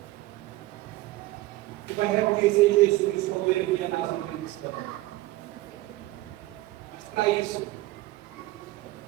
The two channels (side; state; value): left; quieter; 18.2 dB